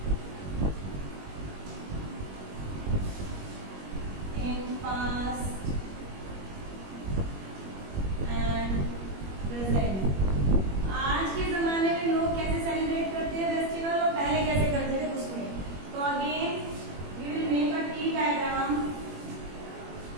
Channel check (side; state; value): left; late; 21 ms